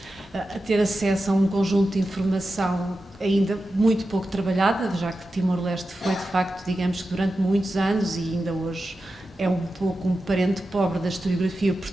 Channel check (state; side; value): normal; both; correlation 0.92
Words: a ter acesso a um conjunto de informação ainda muito pouco trabalhada, já que Timor-Leste foi, de facto, digamos que durante muitos anos, e ainda hoje é um pouco um parente pobre da historiografia